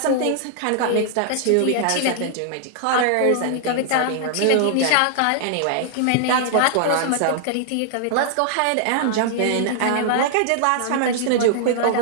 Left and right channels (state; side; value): different; both; correlation -0.01